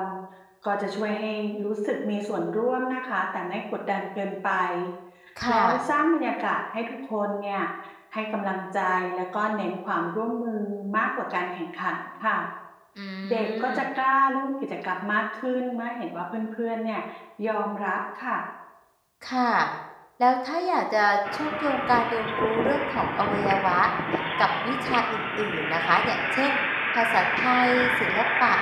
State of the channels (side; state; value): both; identical; correlation 1.00